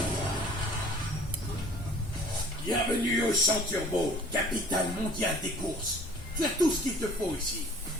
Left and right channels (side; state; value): both; normal; correlation 0.50